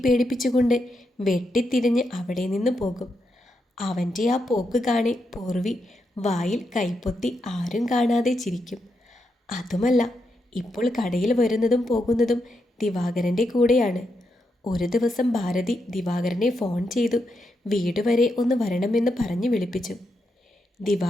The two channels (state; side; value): normal; both; correlation 0.83